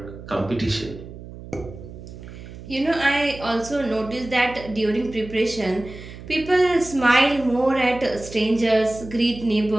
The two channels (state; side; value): noise; right; hum, 14 dB below the sound